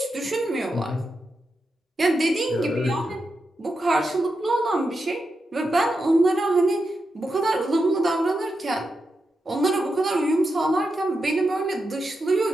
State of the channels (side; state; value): both; normal; correlation 0.87